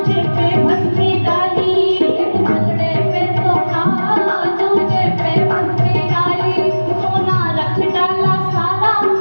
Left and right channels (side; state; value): both; inverted; correlation -1.00